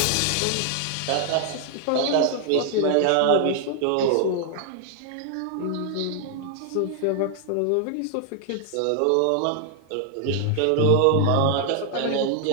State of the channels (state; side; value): different; both; correlation 0.00